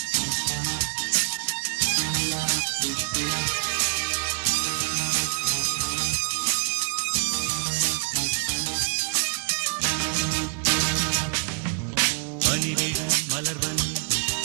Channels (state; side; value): quieter; left; 35.6 dB